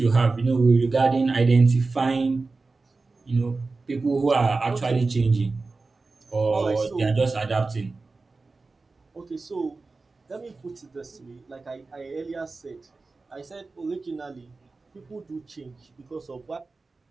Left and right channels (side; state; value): left; quieter; 3.8 dB